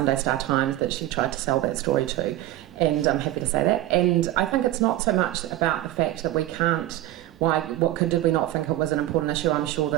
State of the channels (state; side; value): quieter; left; 15.0 dB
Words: Star Times that she tried to sell that story to, and I'm happy to say that, and I think it's not so much about the fact that we can't, did we not think it was an important issue? I'm sure